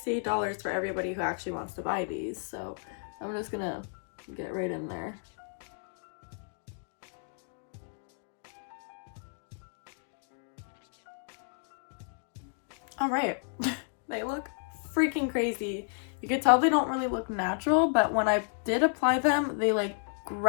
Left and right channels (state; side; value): silent; right; digital silence